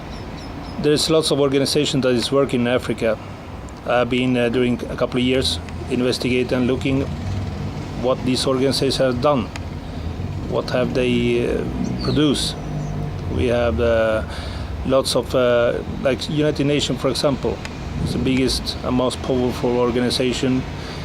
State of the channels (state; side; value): identical; both; correlation 1.00